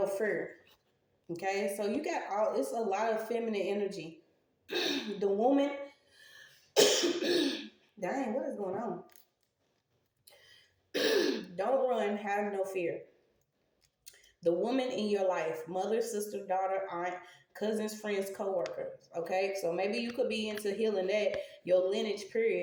fear. Okay, so you got it's a lot of feminine energy. The woman, dang, what is going on? Don't run, have no fear. The woman in your life, mother, sister, daughter, aunt, cousins, friends, co-workers. Okay, so maybe you could be into healing that your lineage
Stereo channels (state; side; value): identical; both; correlation 1.00